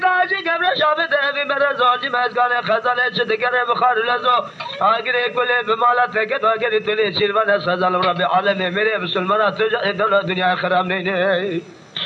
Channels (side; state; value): both; identical; correlation 1.00